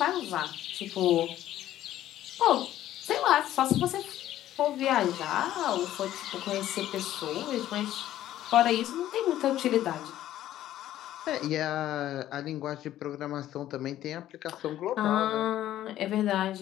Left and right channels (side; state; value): right; quieter; 13.0 dB